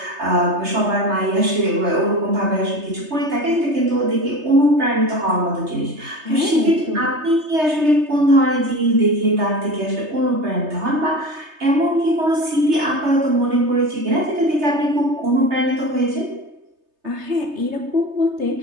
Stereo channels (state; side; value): late; left; 3.3 ms